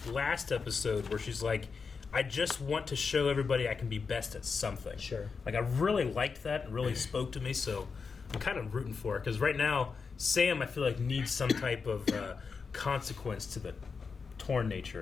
last episode where she's like, I just want to show everybody I can be best at something. Sure. Like, I really liked that. It really spoke to me, so I'm kind of rooting for her. Because right now, Sam, I feel like, needs some type of consequence to the torn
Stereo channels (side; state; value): right; quieter; 5.2 dB